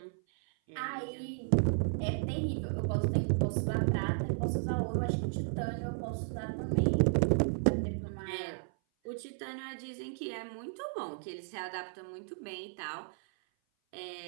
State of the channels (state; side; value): silent; left; 55 dB below the other